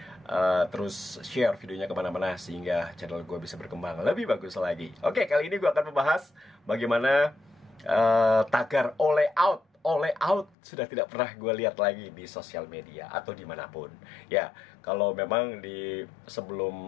terus share videonya kemana-mana sehingga channel gue bisa berkembang lebih bagus lagi. Oke, kali ini gue akan membahas bagaimana tagar all out sudah tidak pernah gue lihat lagi di sosial media atau dimanapun. Ya, kalau memang di sebelum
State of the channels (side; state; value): right; drops out; at 10.6 s